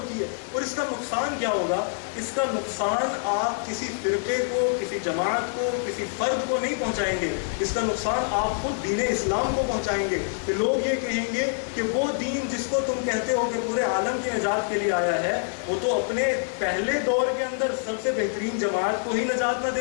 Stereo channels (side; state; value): right; silent; digital silence